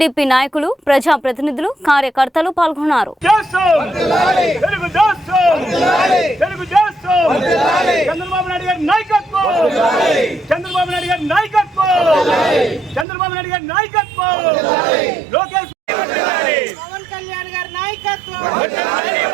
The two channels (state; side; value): drops out; left; at 13.1 s